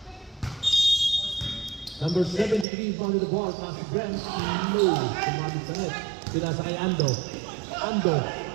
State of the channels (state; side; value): drops out; left; at 2.7 s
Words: Number 73 found the ball. Pass to Brent. No. Sumabit sa net. Pinasa kay Ando. Ando.